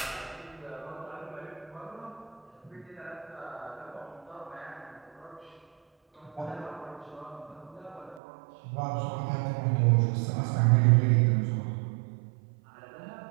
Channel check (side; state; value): left; drops out; at 8.2 s